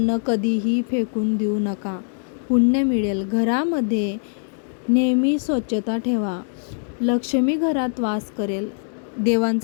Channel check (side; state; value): right; silent; digital silence